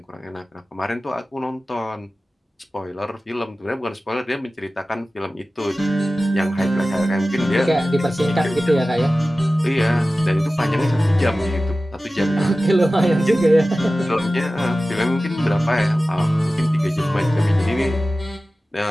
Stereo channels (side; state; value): both; normal; correlation 0.96